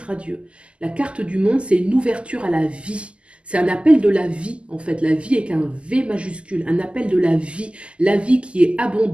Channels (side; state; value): left; late; 0.054 ms